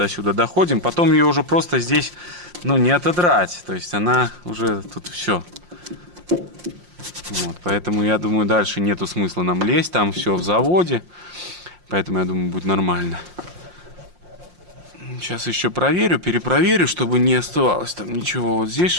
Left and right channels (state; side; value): late; left; 5.7 ms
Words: сюда доходим. Потом ее уже просто здесь, ну, не отодрать. То есть она уже тут все. Вот. Поэтому, я думаю, дальше нету смысла нам лезть. Там все в заводе. Поэтому, я думаю, будет нормально. Сейчас еще проверю, перепроверю, чтобы не оставалось там ничего. Вот здесь